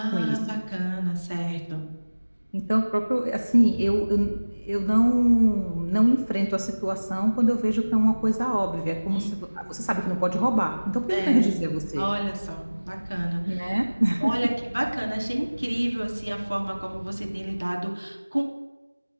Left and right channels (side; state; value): both; inverted; correlation -1.00